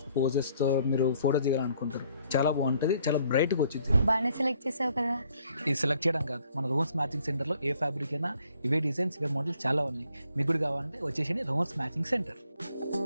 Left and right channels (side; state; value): both; inverted; correlation -0.65